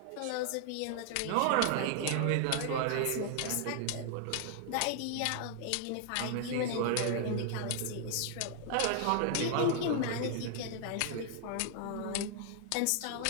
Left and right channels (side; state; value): both; different; correlation 0.00